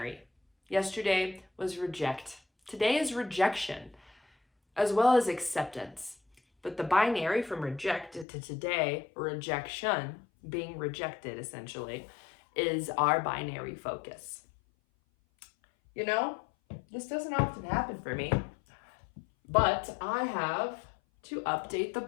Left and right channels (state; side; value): drops out; right; at 8.2 s